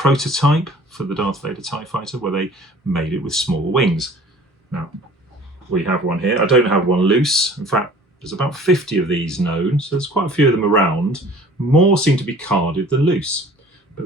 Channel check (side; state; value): both; normal; correlation 0.49